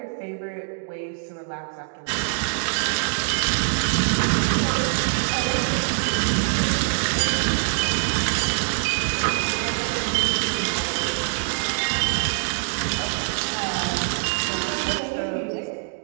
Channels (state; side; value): silent; left; digital silence